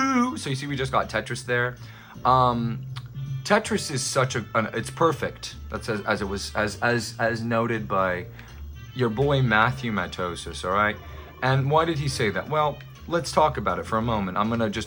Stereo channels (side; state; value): both; identical; correlation 1.00